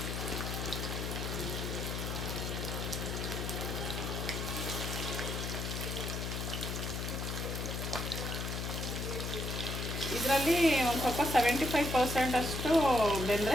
ಇದರಲ್ಲಿ ಒಂದು ಸ್ವಲ್ಪ 75% ಅಷ್ಟು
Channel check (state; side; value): noise; left; hum, 3 dB below the sound